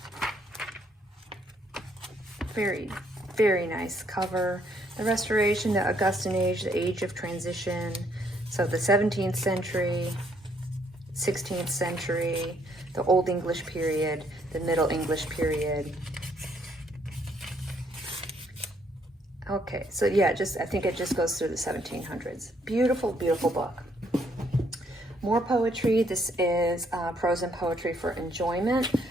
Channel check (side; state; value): both; normal; correlation 0.69